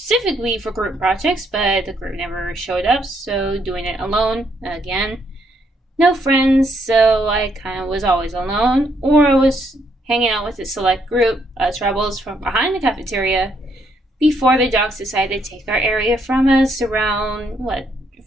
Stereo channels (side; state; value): both; normal; correlation 0.73